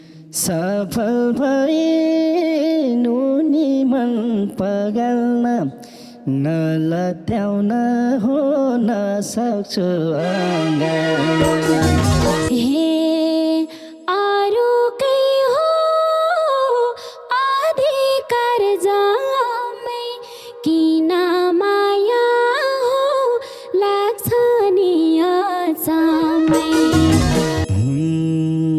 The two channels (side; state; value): both; identical; correlation 1.00